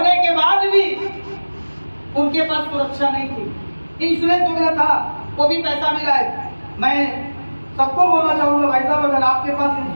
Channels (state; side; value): inverted; both; correlation -1.00